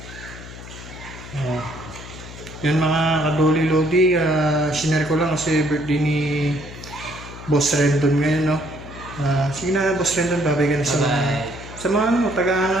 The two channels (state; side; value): noise; left; hum, 14 dB below the sound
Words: Yun mga kadoli lodi, sinare ko lang kasi birthday ni Boss Rendon ngayon, no? Sige na, Boss Rendon, babay ka na sa mga... Sa mga